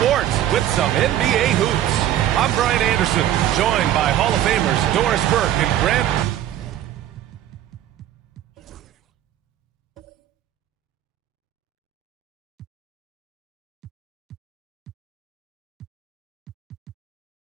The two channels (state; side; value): quieter; left; 12.0 dB